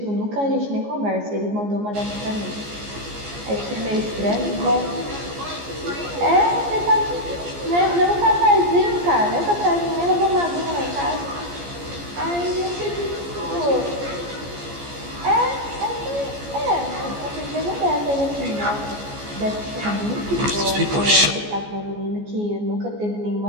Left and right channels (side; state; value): left; late; 14 ms